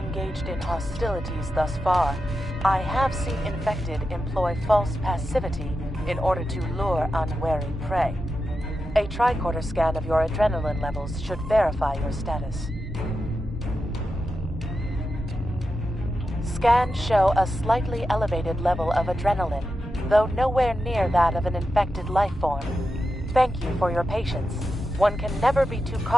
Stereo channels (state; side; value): normal; both; correlation 0.89